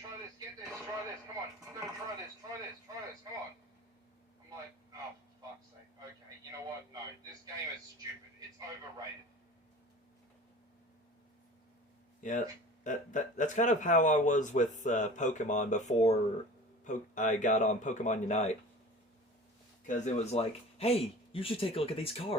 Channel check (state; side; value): normal; both; correlation 0.40